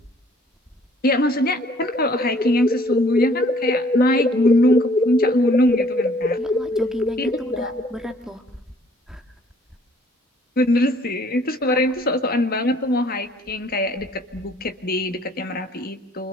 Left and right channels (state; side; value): normal; both; correlation 0.59